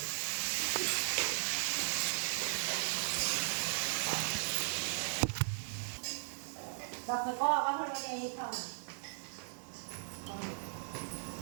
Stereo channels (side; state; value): left; silent; digital silence